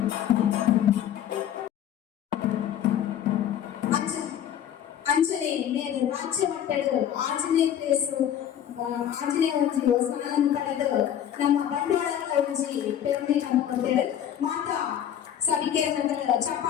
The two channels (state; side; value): quieter; right; 10.1 dB